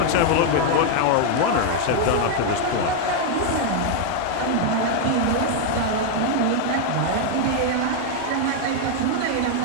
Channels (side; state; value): both; different; correlation 0.00